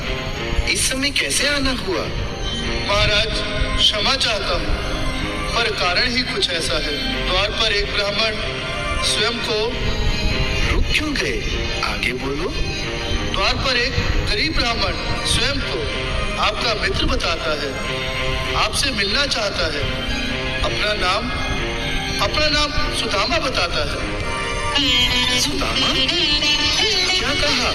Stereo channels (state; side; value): identical; both; correlation 1.00